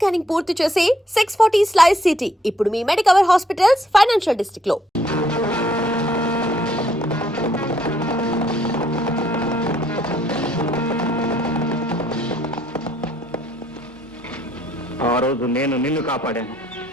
పూర్తి చేసి 640 స్లైస్ సిటీ ఇప్పుడు మీ మెడికవర్ హాస్పిటల్స్ ఫైనాన్షియల్ డిస్ట్రిక్ట్ లో. ఆ రోజు నేను నిన్ను కాపాడాను,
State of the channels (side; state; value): both; normal; correlation 0.69